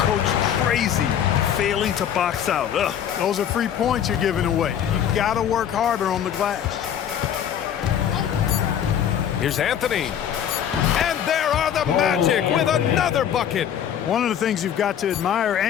crazy, failing to box out. Ugh. Those are free points you're giving away. You've got to work harder on the glass. Here's Anthony. And there are the Magic with another bucket. One of the things you've got to admire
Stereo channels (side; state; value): right; quieter; 9.4 dB